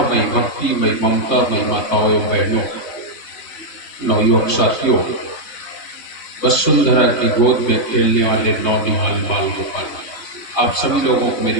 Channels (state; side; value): late; right; 3.5 ms